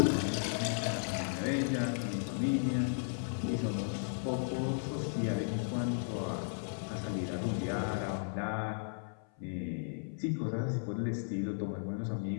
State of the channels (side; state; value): right; silent; 54 dB below the other